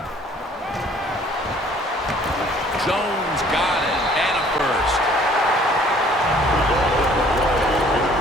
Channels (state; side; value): normal; both; correlation 0.56